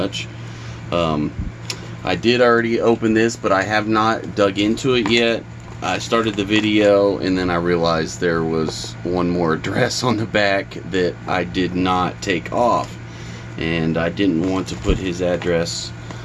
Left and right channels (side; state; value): both; identical; correlation 1.00